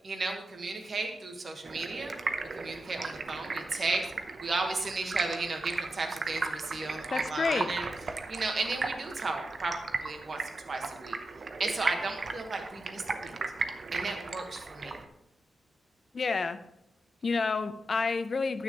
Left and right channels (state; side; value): normal; both; correlation 0.88